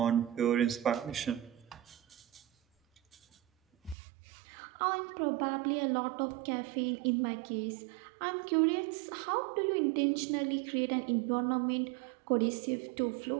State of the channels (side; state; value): left; drops out; at 4.0 s